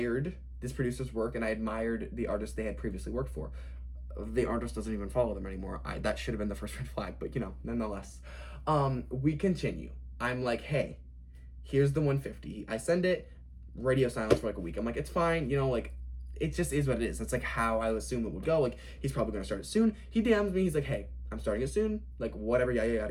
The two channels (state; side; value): identical; both; correlation 1.00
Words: this producer's work and I admired the artist they had previously worked for. The artist doesn't even follow them anymore. That should have been the first red flag, but nonetheless. We continue. I'm like, hey, here's the 150. I send it. Radio silence for like a week. I'm like, it's fine, like it just is what it is. That's like how I assume it would go. Like he's probably gonna start it soon. He DMs me, he's like, hey, I'm starting it soon, like whatever, yada yada